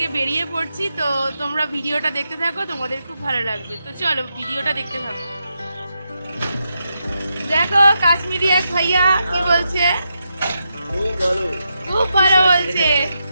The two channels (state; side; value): inverted; both; correlation -0.85